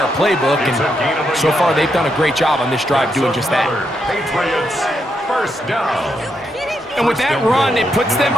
playbook, and so far they've done a great job on this drive doing just that. Patriots, 1st down. And with that run, it puts them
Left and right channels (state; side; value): normal; both; correlation 0.80